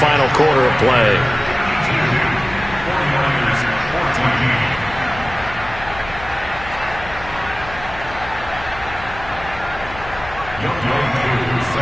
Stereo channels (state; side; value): noise; left; hum, 14 dB below the sound